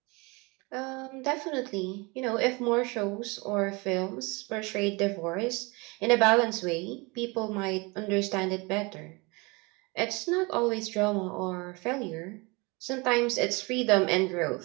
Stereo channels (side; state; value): left; quieter; 27.0 dB